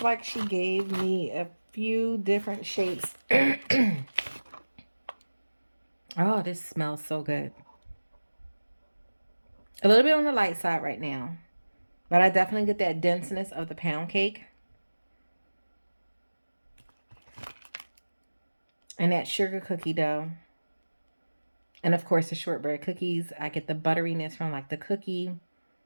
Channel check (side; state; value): both; inverted; correlation -1.00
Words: like she gave me a few different shapes. Oh, this smells so good. A little bit on the light side right now, but I definitely get that denseness of the pound cake and that sugar cookie dough. And of course the shortbread cookies. I get the butteriness from like the cookie,